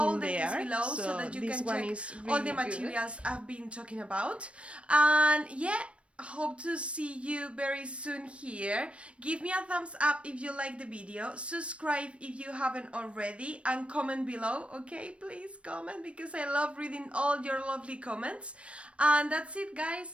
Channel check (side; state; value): left; late; 0.061 ms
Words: there. So this one is really all the materials I've been talking about. And yeah, hope to see you very soon here. Give me a thumbs up if you like the video, subscribe if you haven't already, and comment below, okay? Please comment, because I love reading all your lovely comments. And that's it, guys.